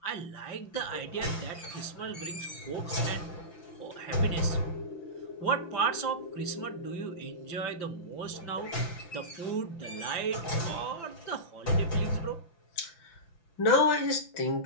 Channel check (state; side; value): late; right; 5.9 ms